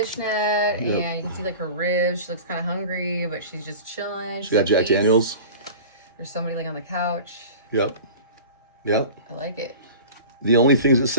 and you can see like her ribs. She looks kind of hungry, but she's just chilling. She got Jack peace. Daniels. There's somebody laying on the couch. Yep. Yep. I like it. The only things it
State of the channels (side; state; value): both; inverted; correlation -0.36